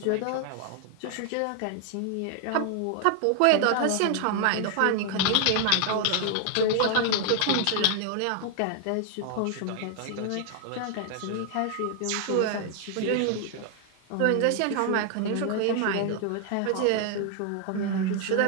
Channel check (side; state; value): both; different; correlation 0.00